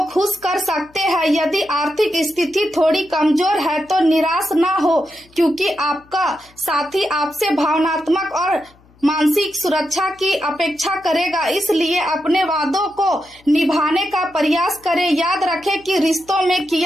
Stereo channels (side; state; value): left; noise; hum, 29 dB below the sound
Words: खुश कर सकते हैं। यदि आर्थिक स्थिति थोड़ी कमजोर है तो निराश ना हो, क्योंकि आपका साथी आपसे भावनात्मक और मानसिक सुरक्षा की अपेक्षा करेगा, इसलिए अपने वादों को निभाने का प्रयास करें। याद रखें कि रिश्तों में